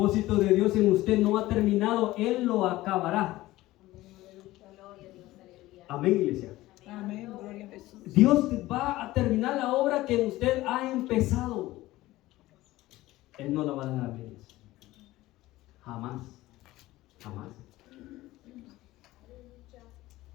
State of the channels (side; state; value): right; quieter; 17.3 dB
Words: de Dios en usted no ha terminado, Él lo acabará. Amén, iglesia. Amén, gloria a Jesús. Dios va a terminar la obra que usted ha empezado. Él no la va a dejar a medias. Jamás. Jamás.